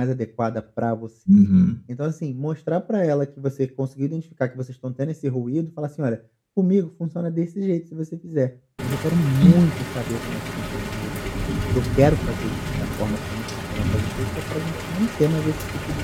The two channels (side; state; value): both; identical; correlation 1.00